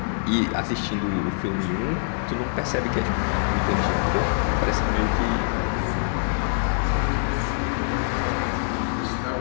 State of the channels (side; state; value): right; silent; digital silence